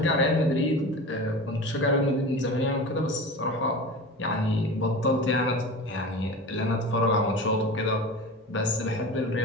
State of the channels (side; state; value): both; normal; correlation 0.32